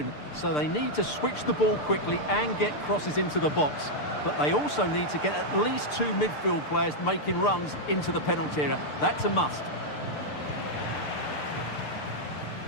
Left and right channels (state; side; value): late; right; 6.7 ms